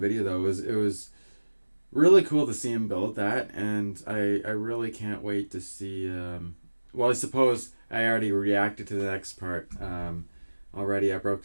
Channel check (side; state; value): both; inverted; correlation -1.00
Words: though, it was really cool to see him build that, and I really can't wait to see. Well, I suppose I already reacted to the next part. Already I